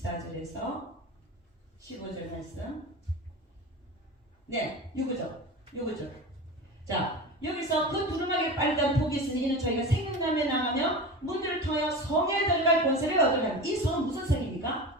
15절 말씀. 네, 요거죠. 자, 여기서 그 두루마기를 빨간 복이 있으니 이는 저희가 생명남에 나가며 문들을 통하여 성에 들어갈 권세를 얻으려 합니다. 이 성은 무슨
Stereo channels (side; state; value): both; normal; correlation 0.29